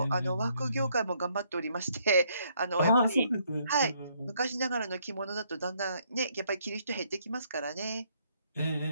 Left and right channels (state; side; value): inverted; both; correlation -0.69